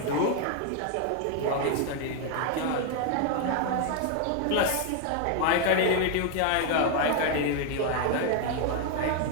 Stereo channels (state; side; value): different; both; correlation 0.01